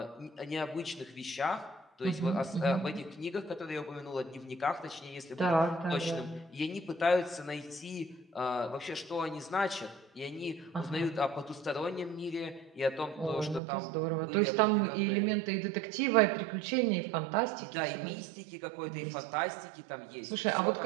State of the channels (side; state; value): left; drops out; at 13.6 s